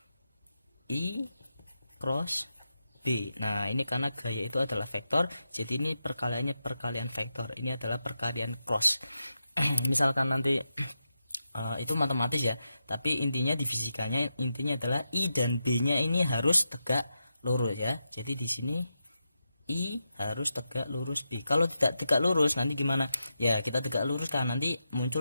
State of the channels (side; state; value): both; inverted; correlation -0.87